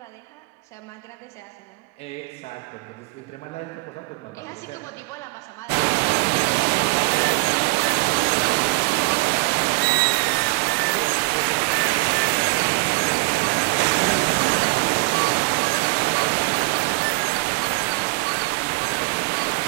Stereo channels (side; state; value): left; quieter; 27.2 dB